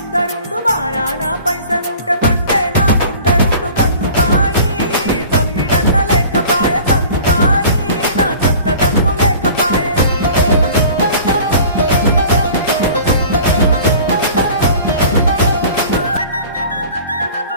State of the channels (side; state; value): both; inverted; correlation -0.44